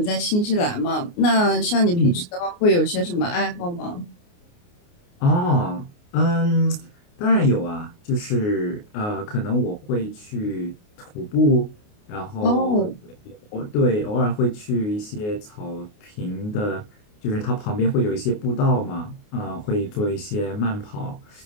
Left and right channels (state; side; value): late; right; 29 ms